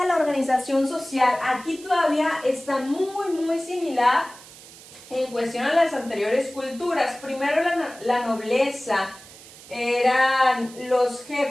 la organización social? Aquí todavía está muy similar en cuestión a las anteriores culturas. Primero la nobleza, eran los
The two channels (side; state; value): right; noise; hiss, 19 dB below the sound